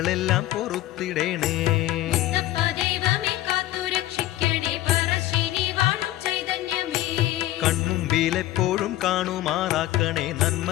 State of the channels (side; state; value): right; quieter; 15.3 dB